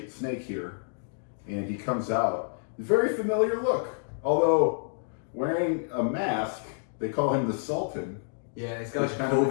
the Snake here, and he comes out. Very familiar look, although wearing a mask. They call him the Sultan. Yeah, he's got a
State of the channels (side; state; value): right; silent; digital silence